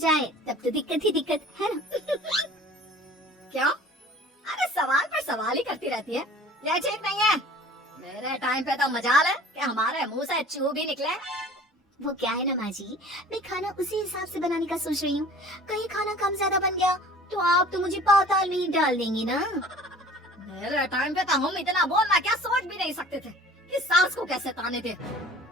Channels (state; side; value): normal; both; correlation 0.47